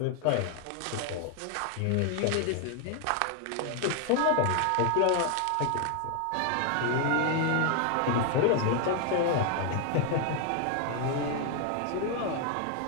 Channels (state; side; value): different; both; correlation 0.00